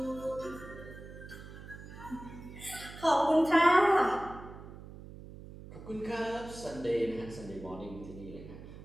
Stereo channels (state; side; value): noise; right; hum, 14 dB below the sound